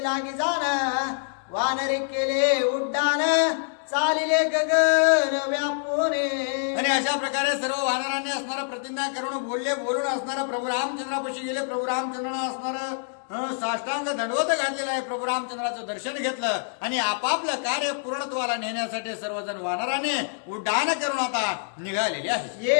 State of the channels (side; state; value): right; silent; digital silence